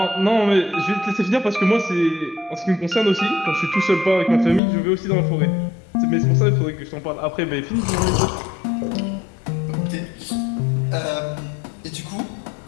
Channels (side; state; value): right; drops out; at 4.6 s